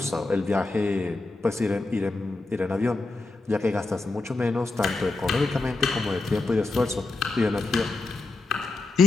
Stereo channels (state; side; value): quieter; right; 3.3 dB